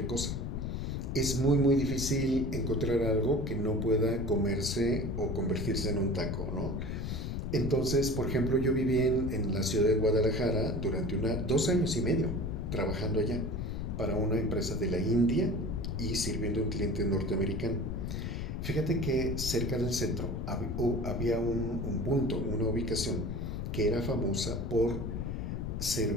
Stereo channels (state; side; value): noise; left; rumble, 3 dB below the sound